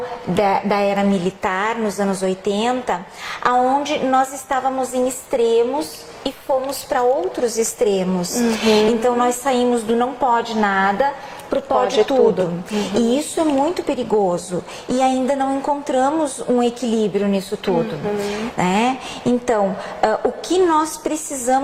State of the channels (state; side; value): identical; both; correlation 1.00